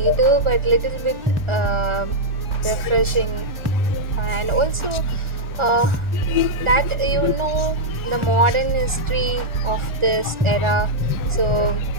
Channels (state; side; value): late; left; 1.4 ms